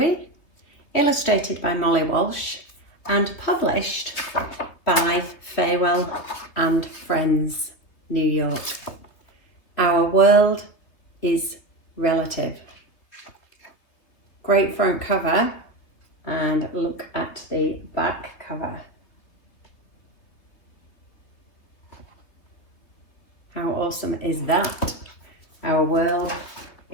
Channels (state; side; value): late; right; 3.3 ms